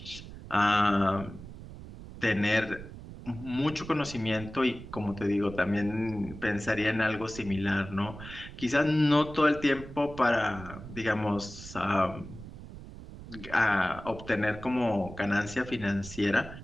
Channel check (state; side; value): noise; right; rumble, 14 dB below the sound